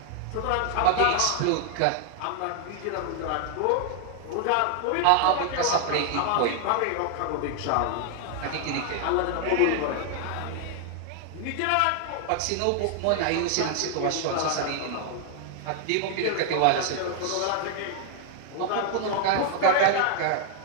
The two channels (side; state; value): both; different; correlation 0.00